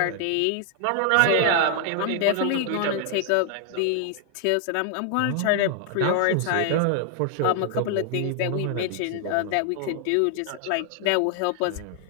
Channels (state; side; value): different; both; correlation 0.00